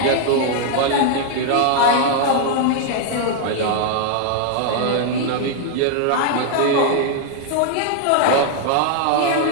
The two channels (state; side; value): different; both; correlation 0.00